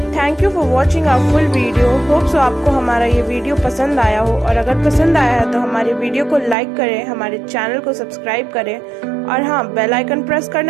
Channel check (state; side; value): drops out; left; at 6.6 s